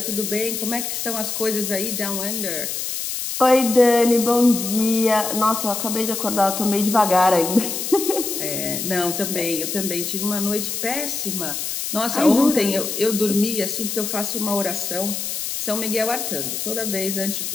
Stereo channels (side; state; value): left; noise; hiss, 4 dB below the sound